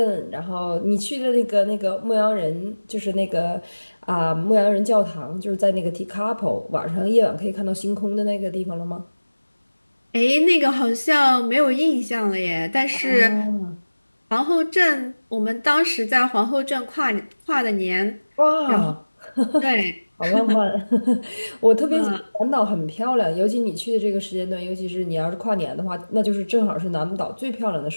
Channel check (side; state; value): both; inverted; correlation -1.00